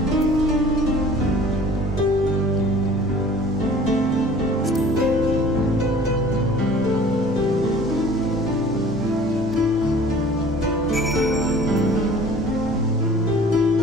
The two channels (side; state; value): both; normal; correlation 0.48